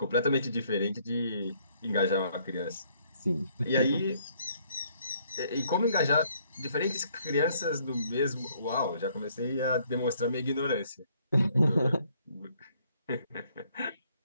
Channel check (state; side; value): inverted; both; correlation -0.66